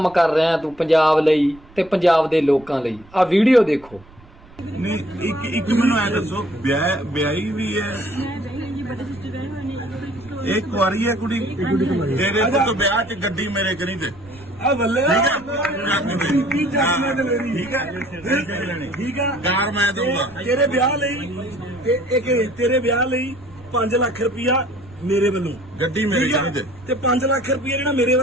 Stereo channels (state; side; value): noise; right; rumble, 24 dB below the sound